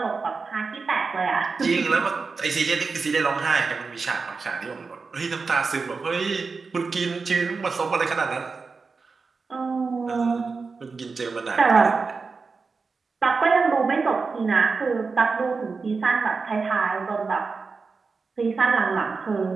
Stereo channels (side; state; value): left; quieter; 4.6 dB